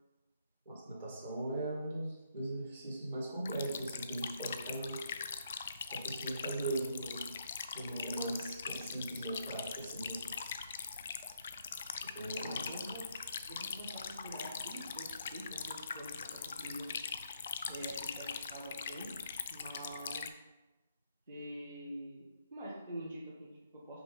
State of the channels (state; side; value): inverted; both; correlation -0.73